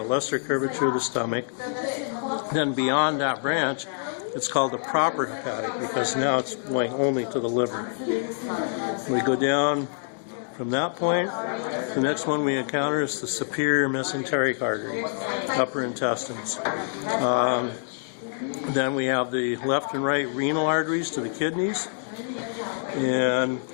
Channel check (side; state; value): right; silent; digital silence